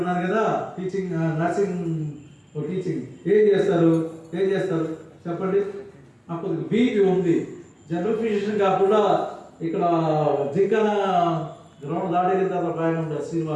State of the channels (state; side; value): identical; both; correlation 1.00